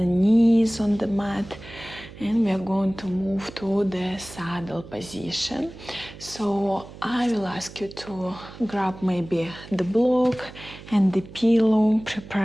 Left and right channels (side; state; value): right; noise; hum, 16 dB below the sound